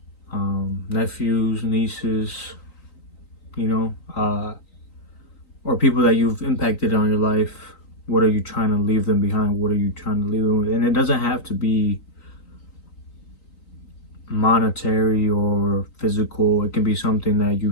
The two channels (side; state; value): right; late; 3.9 ms